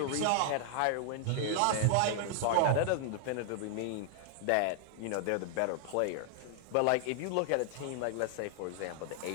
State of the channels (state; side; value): different; both; correlation -0.01